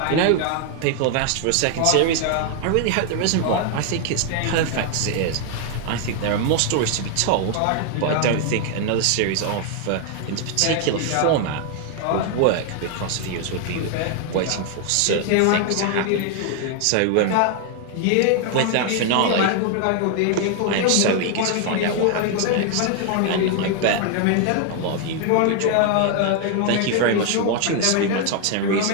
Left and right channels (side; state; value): both; different; correlation 0.00